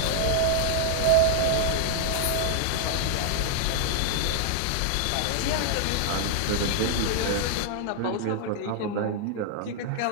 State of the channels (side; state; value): both; different; correlation -0.01